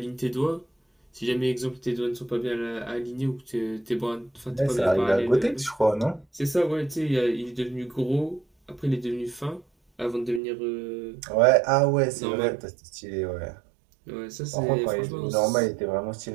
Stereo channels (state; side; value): drops out; left; at 10.4 s